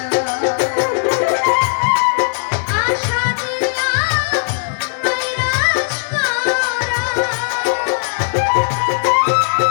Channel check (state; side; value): silent; right; digital silence